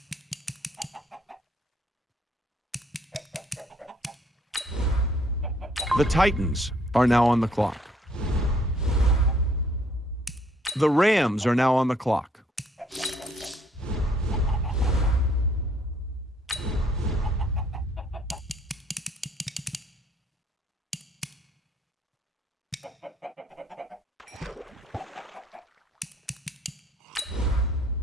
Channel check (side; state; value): both; normal; correlation 0.64